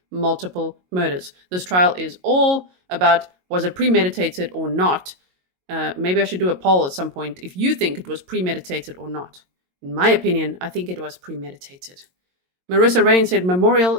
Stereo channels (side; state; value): left; late; 22 ms